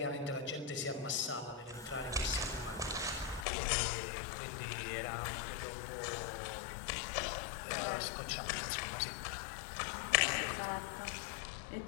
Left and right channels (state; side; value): drops out; right; at 3.5 s